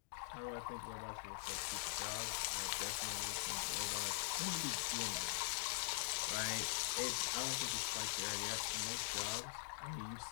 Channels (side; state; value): right; silent; digital silence